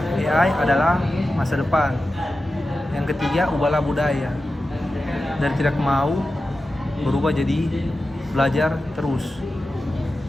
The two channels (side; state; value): both; normal; correlation 0.93